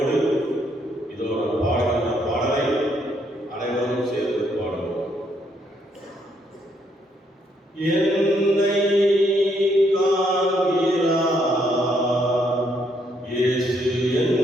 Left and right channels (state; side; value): normal; both; correlation 0.72